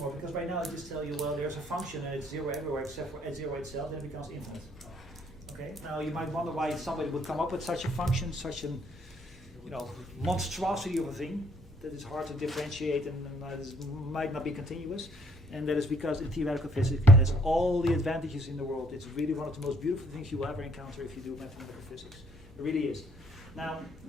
because right now I just tell you, well, there's a function and it's 0 everywhere except for at 0 itself, then it becomes infinite. Okay. Now you might wonder why somebody would come up with such a function, such an monstrosity of a thing that is hard to differentiate and might not be continuous. And that is because in theoretical physics it has all the advantages in the world. It's really one of the most beautiful things you will ever encounter if you do mathematical physics. It really is. Now,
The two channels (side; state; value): both; normal; correlation 0.65